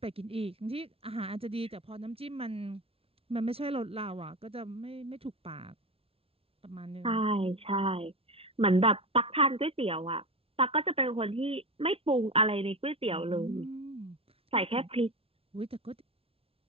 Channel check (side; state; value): left; late; 0.27 ms